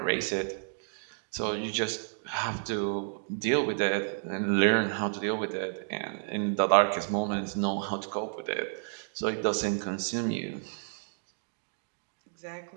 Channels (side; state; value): left; silent; digital silence